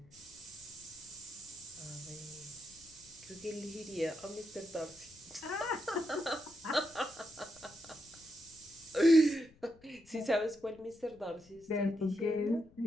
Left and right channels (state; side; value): noise; left; rumble, 26 dB below the sound